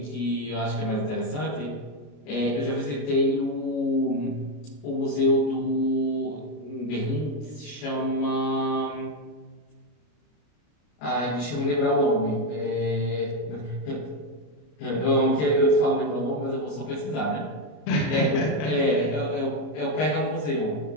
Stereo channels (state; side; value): late; right; 33 ms